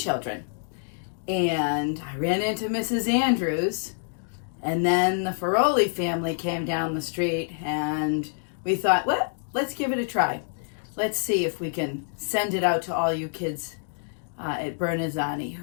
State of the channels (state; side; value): silent; right; 60 dB below the other